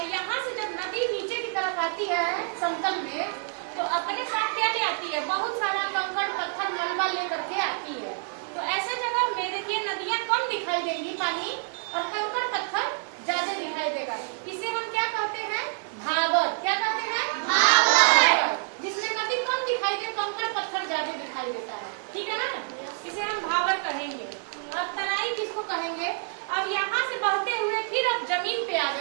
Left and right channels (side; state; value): left; silent; 55 dB below the other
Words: यहाँ से जब नदी नीचे की तरफ आती है समतल में, तो अपने साथ क्या ले आती है, बहुत सारा कंकड़ पत्थर मलबा लेकर के आती है। तो ऐसे जगह में देखिए नदियाँ कम दिखाई देंगी पानी, और कंकड़ पत्थर ज्यादा दिखाई देगा। इसे हम क्या कहते हैं, भावर। क्या कहते हैं, भावर। जिसमें नदी कम दिखाई दे, कंकड़ पत्थर ज्यादा दिखाई देता है, ठीक है ना, इसे हम भावर कहेंगे। अब तराई किसको कहेंगे। अब यहाँ से बहते हुए फिर अब जमीन पे आ